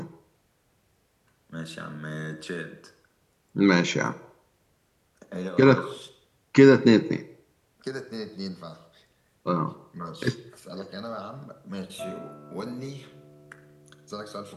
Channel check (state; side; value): identical; both; correlation 1.00